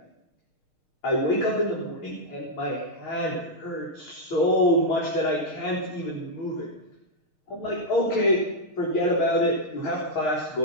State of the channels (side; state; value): right; late; 6.5 ms